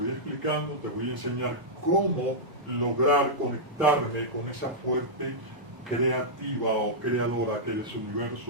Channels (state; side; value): late; left; 1.0 ms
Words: explicando, te voy a enseñar cómo lograr conectarme con esa fuerte creativa o creadora que eres